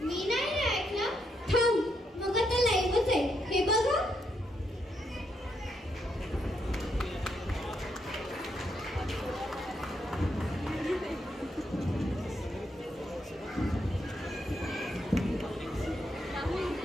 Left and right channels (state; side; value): normal; both; correlation 0.78